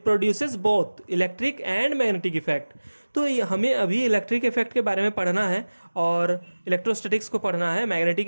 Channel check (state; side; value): inverted; both; correlation -1.00